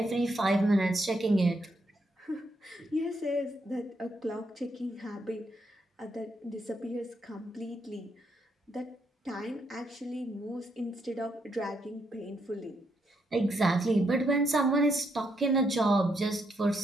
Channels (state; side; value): normal; both; correlation 0.77